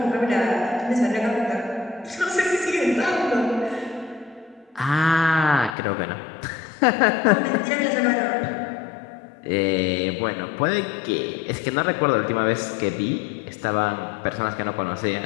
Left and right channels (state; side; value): drops out; right; at 5.8 s